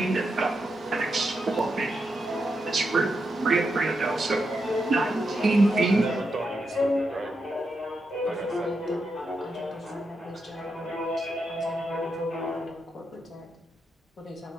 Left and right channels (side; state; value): both; normal; correlation 0.85